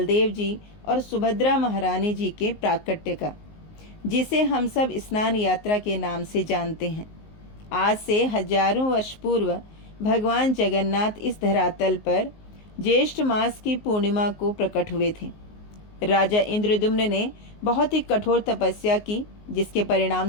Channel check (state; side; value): late; right; 19 ms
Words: जी और सुभद्रा महारानी जी के प्राकट्य का, जिसे हम सब स्नान यात्रा के नाम से जानते हैं। आज से हजारों वर्ष पूर्व भगवान जगन्नाथ इस धरातल पर ज्येष्ठ मास की पूर्णिमा को प्रकट हुए थे। राजा इंद्रद्युम्न ने बहुत ही कठोर तपस्या की, जिसके परिणाम